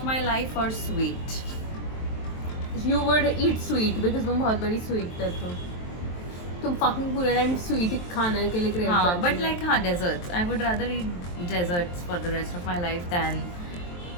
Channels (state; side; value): late; right; 23 ms